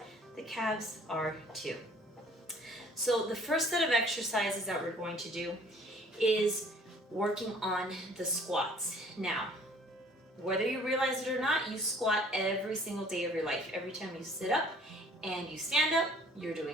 The calves are too. So the first set of exercises that we're going to do is working on the squats. Now, whether you realize it or not, you squat every single day of your life. Every time you sit up and you stand up, you're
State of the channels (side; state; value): both; normal; correlation 0.54